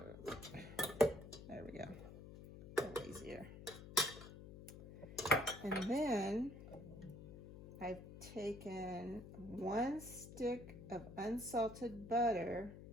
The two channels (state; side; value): noise; left; hum, 13 dB below the sound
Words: There we go. A little easier. And then I've taken 1 stick of unsalted butter